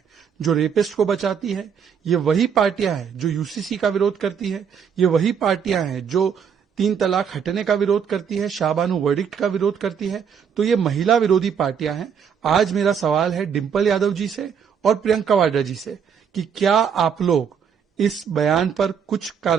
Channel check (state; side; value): quieter; left; 7.2 dB